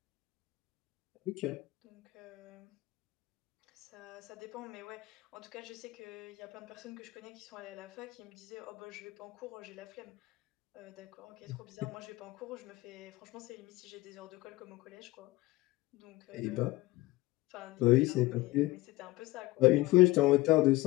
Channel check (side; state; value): right; quieter; 19.4 dB